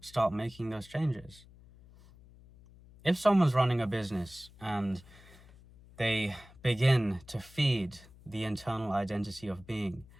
making those changes. If someone's running a business and they begin to feed the internal identity of being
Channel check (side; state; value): left; noise; hum, 23 dB below the sound